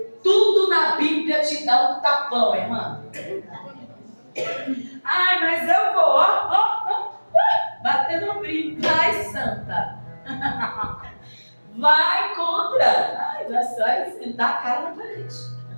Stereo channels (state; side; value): inverted; both; correlation -1.00